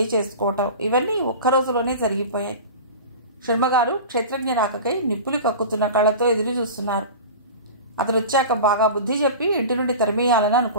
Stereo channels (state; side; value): inverted; both; correlation -0.33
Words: చేసుకోవటం ఇవన్నీ ఒక్కరోజులోనే జరిగిపోయాయి. శర్మగారు క్షేత్రజ్ఞ రాకకై నిప్పులు కక్కుతున్న కళ్ళతో ఎదురు చూస్తున్నారు. అతను వచ్చాక బాగా బుద్ధి చెప్పి ఇంటి నుండి తరిమేయాలని